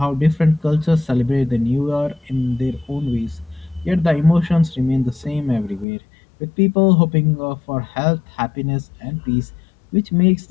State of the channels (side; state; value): right; drops out; at 5.9 s